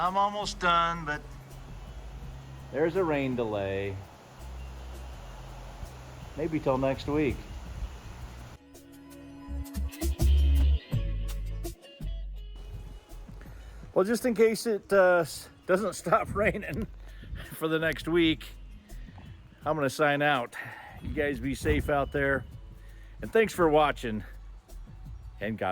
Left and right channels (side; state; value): both; identical; correlation 1.00